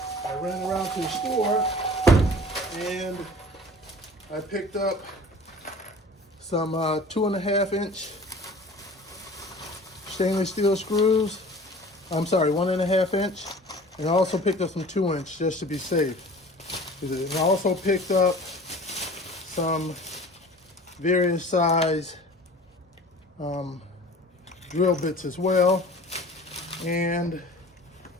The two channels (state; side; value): normal; both; correlation 0.43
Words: I ran around to the store and I picked up some 2.5 inch stainless steel screws. I'm sorry, 1.5 inch. And I also picked up some 2 inch just to be safe. And I also picked up some various size drill bits as well. And